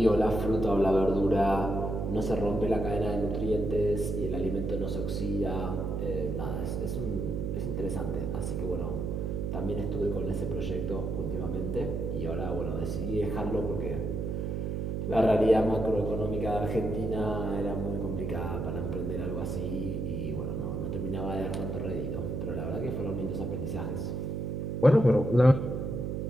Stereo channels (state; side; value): noise; right; hum, 2 dB below the sound